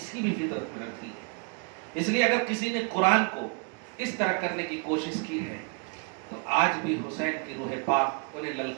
کی بھی فطرت میں رکھ دی ہے. اس لیے اگر کسی نے قرآن کو اس طرح کرنے کی کوشش کی ہے تو آج بھی حسین کی روح پاک انہیں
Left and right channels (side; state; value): left; quieter; 36.7 dB